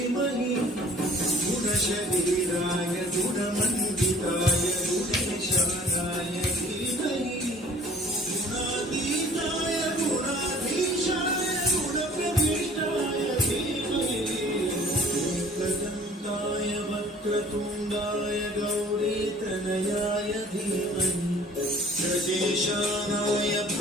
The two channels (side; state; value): both; normal; correlation 0.52